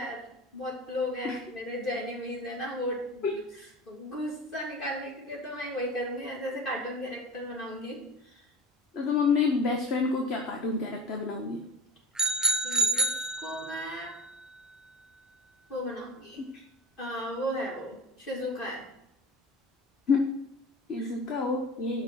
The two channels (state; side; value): normal; both; correlation 0.33